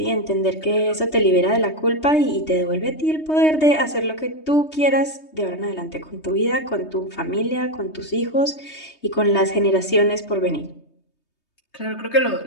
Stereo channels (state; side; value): late; right; 3.2 ms